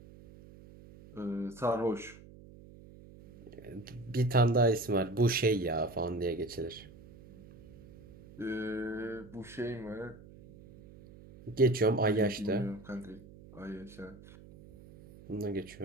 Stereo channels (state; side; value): noise; right; hum, 20 dB below the sound